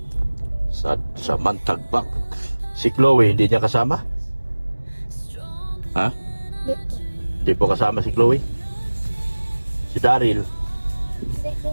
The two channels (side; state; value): both; inverted; correlation -1.00